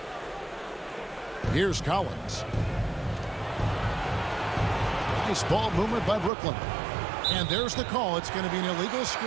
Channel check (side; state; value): left; drops out; at 6.3 s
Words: Here's Collins. Nice ball movement by Brooklyn. And there's the call. It's going to be an illegal